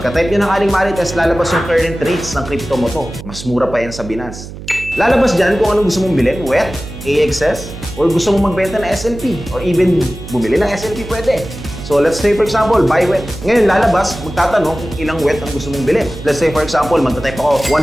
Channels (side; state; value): right; noise; hum, 12 dB below the sound